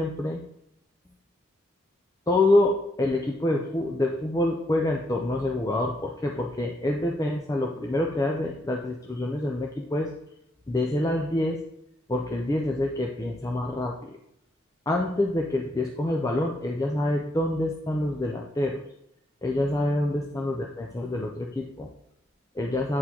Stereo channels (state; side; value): normal; both; correlation 0.76